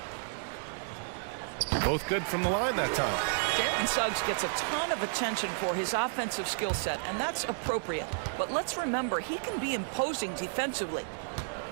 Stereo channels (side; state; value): left; silent; digital silence